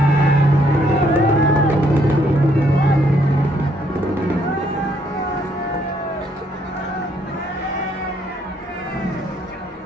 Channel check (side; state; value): both; normal; correlation 0.69